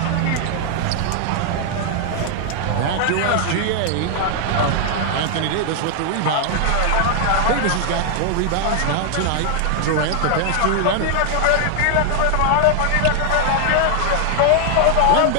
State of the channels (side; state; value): both; different; correlation 0.00